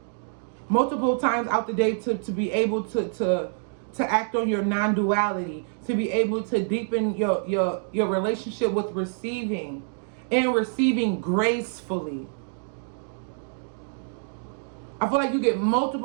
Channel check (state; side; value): silent; left; digital silence